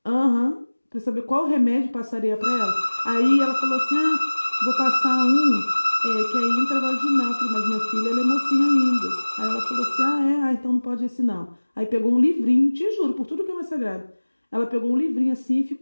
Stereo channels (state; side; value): inverted; both; correlation -1.00